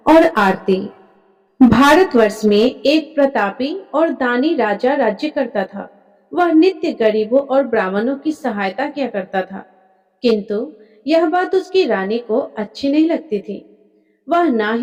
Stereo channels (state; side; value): identical; both; correlation 1.00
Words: और आरती। भारतवर्ष में एक प्रतापी और दानी राजा राज्य करता था। वह नित्य गरीबों और ब्राह्मणों की सहायता किया करता था, किंतु यह बात उसकी रानी को अच्छी नहीं लगती थी। वह ना